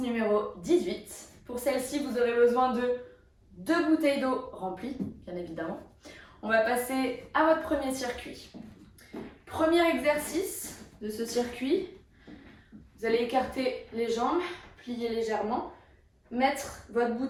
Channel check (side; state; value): both; identical; correlation 1.00